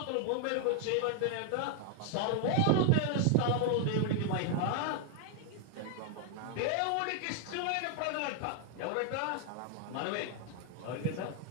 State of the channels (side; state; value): both; different; correlation 0.00